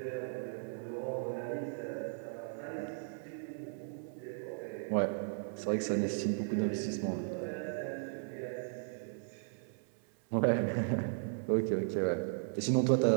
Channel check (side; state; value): left; silent; 54 dB below the other